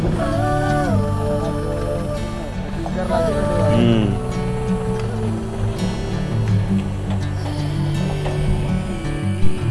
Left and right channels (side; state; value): both; identical; correlation 1.00